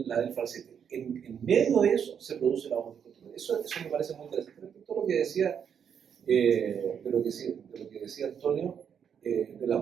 falsete. En medio de eso se produce la voz del contratenor. Eso me parece muy interesante. Respecto a lo que decía, de lo que decía Antonio, del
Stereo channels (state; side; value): quieter; left; 7.8 dB